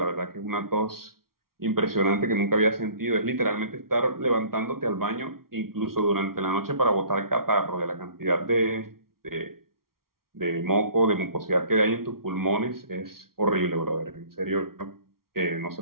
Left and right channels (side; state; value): left; late; 0.93 ms